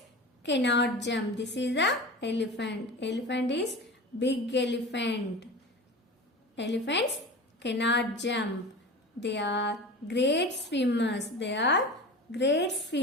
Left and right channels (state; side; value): normal; both; correlation 0.32